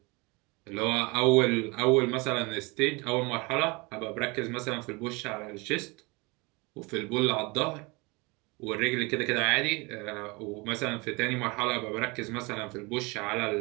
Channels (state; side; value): quieter; left; 26.6 dB